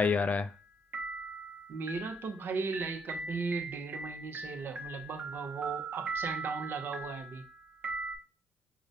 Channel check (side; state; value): both; normal; correlation 0.69